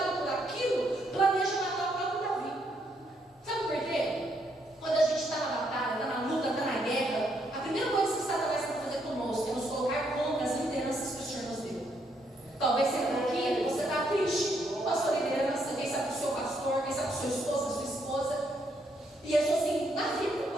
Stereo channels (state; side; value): normal; both; correlation 0.74